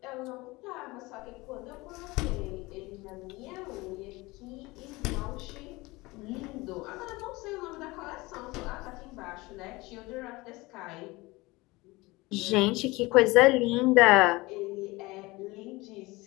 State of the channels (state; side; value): quieter; right; 22.1 dB